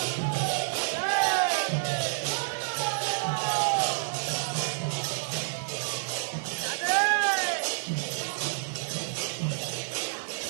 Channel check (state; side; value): silent; left; 59 dB below the other